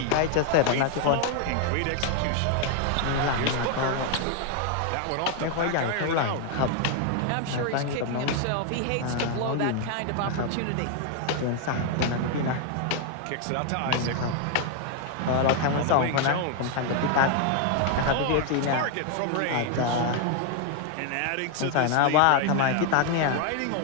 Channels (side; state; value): both; different; correlation 0.00